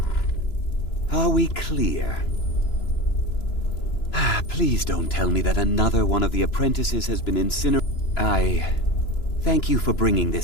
Are we clear? Please don't tell me that another one of the apprentices has been incinerated. I thank you for bringing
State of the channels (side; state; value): right; late; 3.0 ms